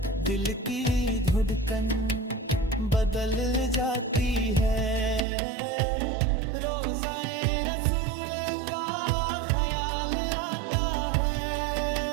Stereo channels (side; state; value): left; drops out; at 5.2 s